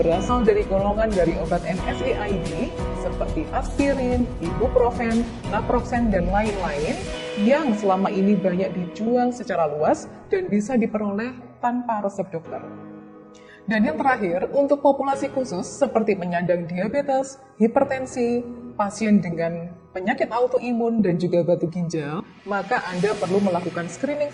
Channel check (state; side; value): identical; both; correlation 1.00